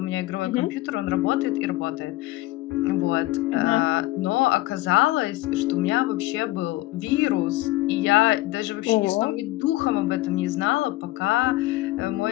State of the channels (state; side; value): quieter; right; 18.0 dB